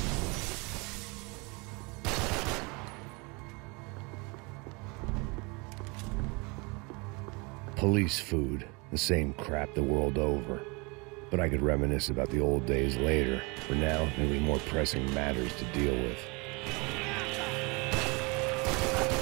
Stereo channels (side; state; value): left; quieter; 28.4 dB